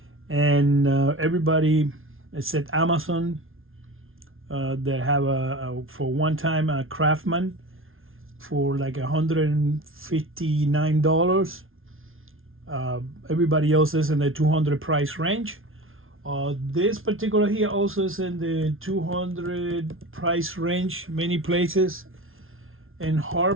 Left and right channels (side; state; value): left; late; 0.60 ms